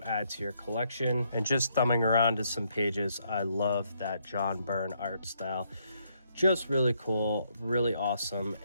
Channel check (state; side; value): inverted; both; correlation -0.73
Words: add to your collection. And just thumbing around to some pages, I love that John Byrne art style. Just really cool, really awesome,